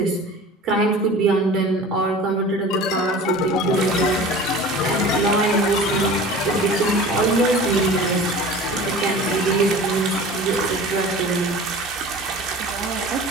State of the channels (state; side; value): normal; both; correlation 0.40